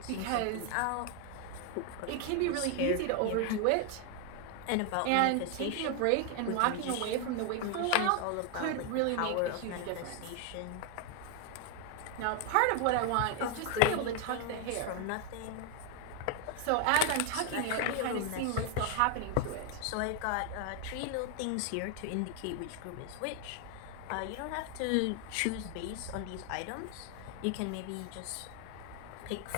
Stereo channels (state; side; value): different; both; correlation 0.00